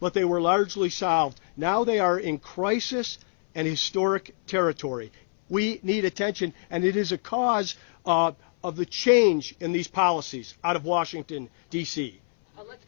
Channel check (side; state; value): right; silent; 61 dB below the other